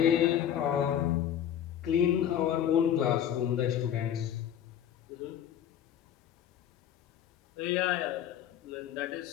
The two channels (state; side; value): quieter; right; 10.1 dB